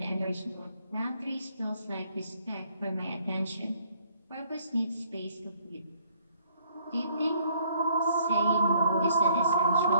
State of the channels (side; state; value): both; inverted; correlation -0.64